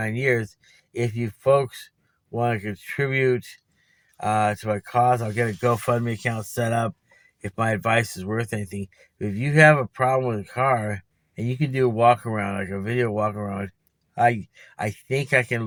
years. If you folks want to contribute to my cause, I'll get a GoFundMe account set up if my advice is worth anything. If you have a problem with a car and you can do a walk around, like a video walk around, I think I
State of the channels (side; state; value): both; identical; correlation 1.00